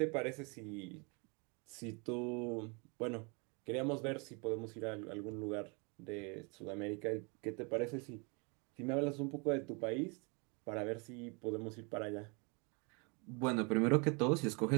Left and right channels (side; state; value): left; quieter; 32.4 dB